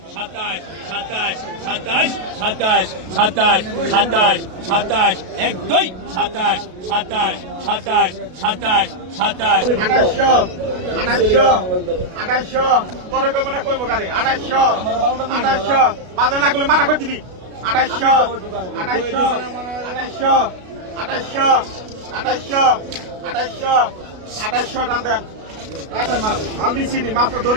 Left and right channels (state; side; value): late; left; 33 ms